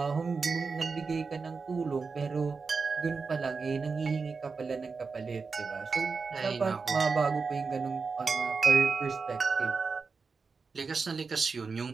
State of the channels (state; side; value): quieter; left; 4.7 dB